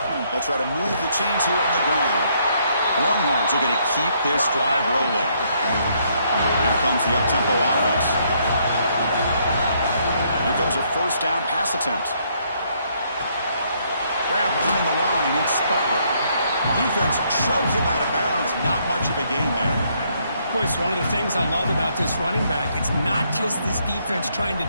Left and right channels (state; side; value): inverted; both; correlation -0.71